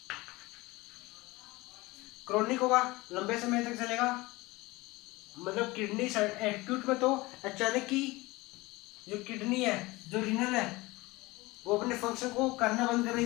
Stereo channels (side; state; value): right; quieter; 21.5 dB